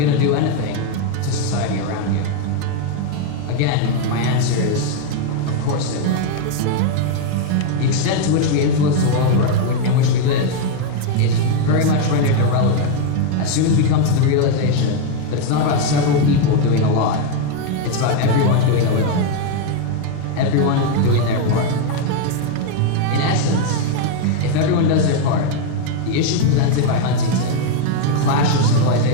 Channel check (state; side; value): different; both; correlation 0.01